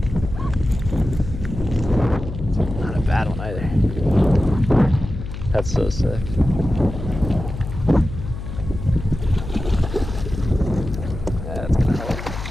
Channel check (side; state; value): left; noise; hum, 8 dB below the sound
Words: Not a bad one either. That's so sick. That's gonna help.